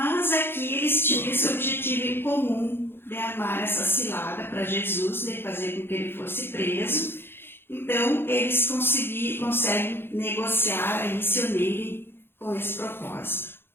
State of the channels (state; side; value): late; right; 0.11 ms